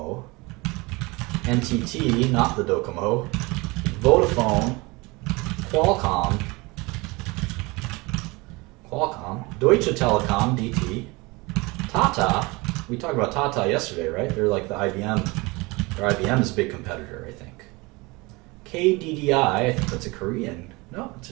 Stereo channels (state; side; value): quieter; left; 24.6 dB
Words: NTT, not the Docomo, Vodafone, Qualcomm, Deutsche Telekom, DT, Tata. We talked about Tata yesterday, right? They're like the IBM. Or IBM's big competitor, I think. KDDI, I think that's a Korean. No, it's